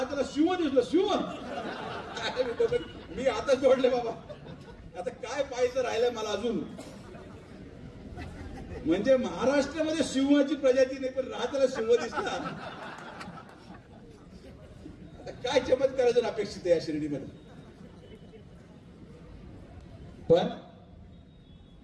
शिव दिसलं, शिव मी आता जोडले बाबा, आता काय पाहायचं राहिलंय मला अजून. म्हणजे महाराष्ट्रामध्ये सिंहाची प्रजाती नाही पण राहताना सिंह दिसला. आता काय चमत्कार अजून अपेक्षित आहे या शिर्डीमध्ये. पण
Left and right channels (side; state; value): both; identical; correlation 1.00